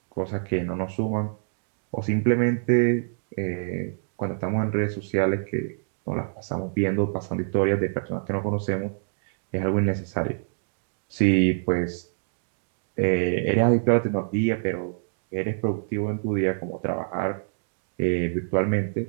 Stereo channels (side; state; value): left; silent; digital silence